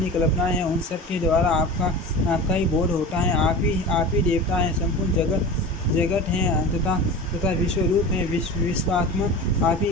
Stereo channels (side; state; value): both; normal; correlation 0.32